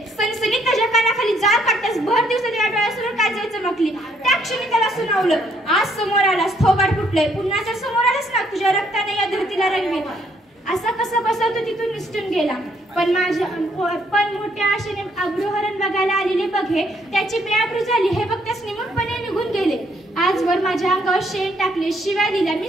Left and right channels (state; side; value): normal; both; correlation 0.69